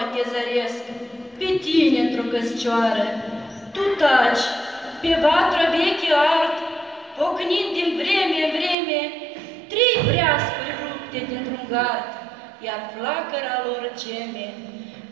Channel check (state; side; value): drops out; left; at 8.8 s